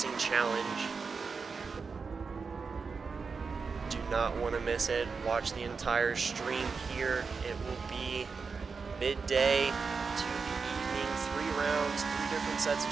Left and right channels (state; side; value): quieter; left; 5.0 dB